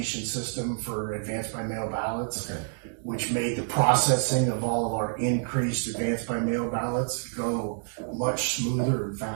system for advanced by mail ballots, Okay. which made the processing of all of our increased advanced by mail ballots go much smoother and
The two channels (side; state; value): left; silent; 59 dB below the other